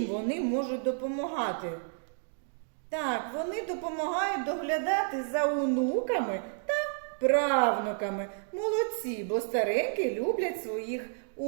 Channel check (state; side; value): silent; left; digital silence